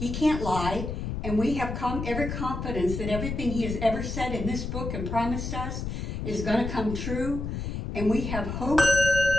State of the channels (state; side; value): noise; left; rumble, 4 dB below the sound